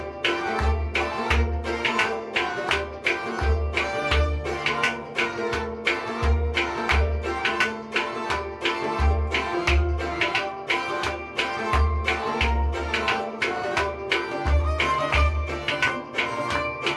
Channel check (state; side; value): identical; both; correlation 1.00